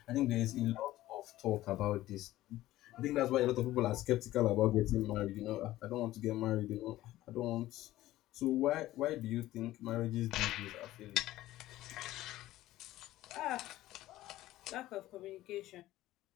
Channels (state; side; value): quieter; right; 15.5 dB